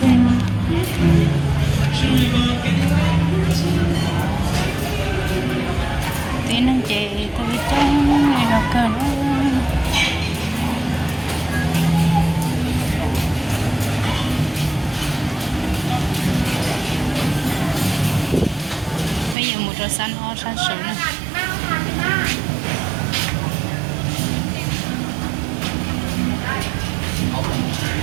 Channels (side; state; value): left; drops out; at 19.4 s